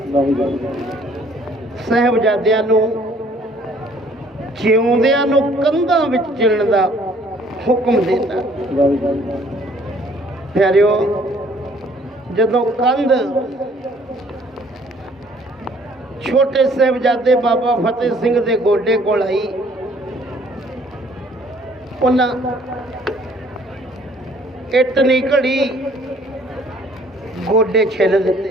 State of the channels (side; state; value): both; normal; correlation 0.59